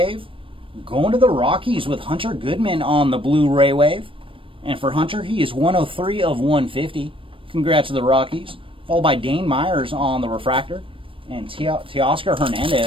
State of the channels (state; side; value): late; left; 0.25 ms